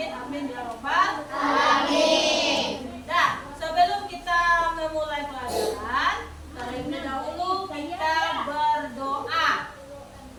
Amin, amin ya robbal alamin. Nah, sebelum kita memulai pelajaran, terlebih dahulu kita berdoa.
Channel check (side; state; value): both; identical; correlation 1.00